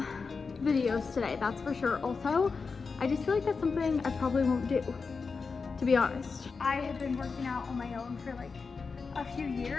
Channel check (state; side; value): quieter; right; 4.8 dB